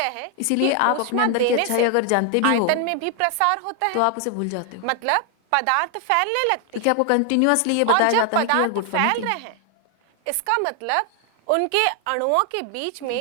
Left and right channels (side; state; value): both; different; correlation 0.00